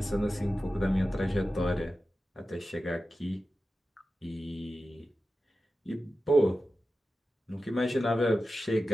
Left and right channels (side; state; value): both; normal; correlation 0.93